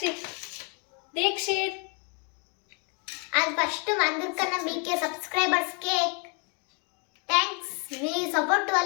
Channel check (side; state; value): right; quieter; 36.5 dB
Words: Dikshit. And first అందరికన్నా మీకే సబ్స్క్రైబర్స్ కేక్ థ్యాంక్స్. మీ సపోర్ట్